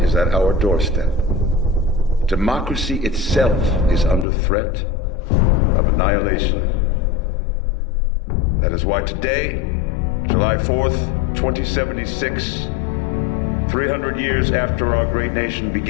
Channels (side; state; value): right; drops out; at 4.2 s